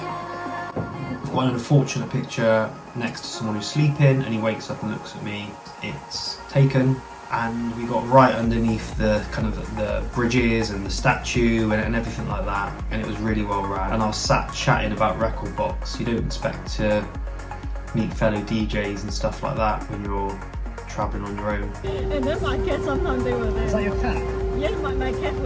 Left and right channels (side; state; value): both; identical; correlation 1.00